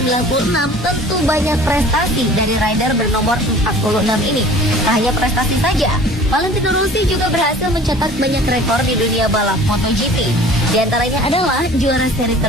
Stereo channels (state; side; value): normal; both; correlation 0.46